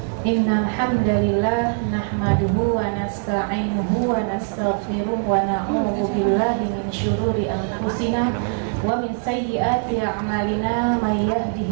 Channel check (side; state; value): left; silent; 64 dB below the other